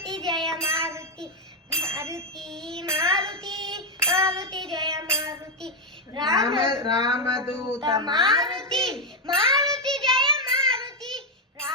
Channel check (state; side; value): normal; both; correlation 0.02